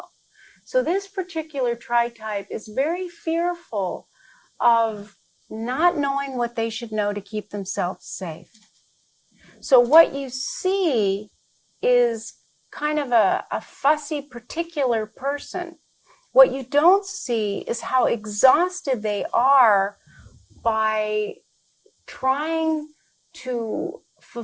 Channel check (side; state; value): both; identical; correlation 1.00